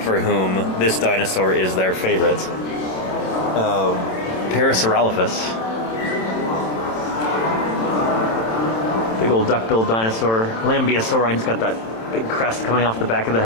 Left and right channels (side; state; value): right; late; 27 ms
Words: for whom this dinosaur is their favorite. Parasaurolophus. Big old duck-billed dinosaur. Lambeosaurine, got that big crest coming off the back of the